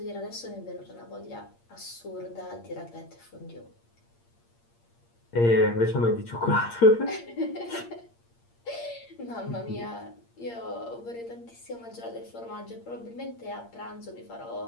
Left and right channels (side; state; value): right; late; 8.6 ms